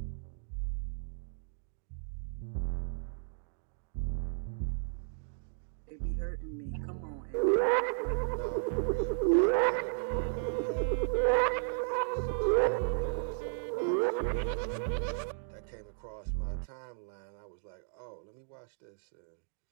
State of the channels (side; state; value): left; silent; digital silence